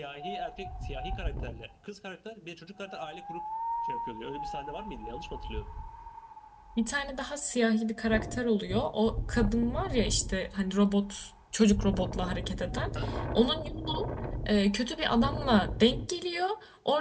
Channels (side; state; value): both; identical; correlation 1.00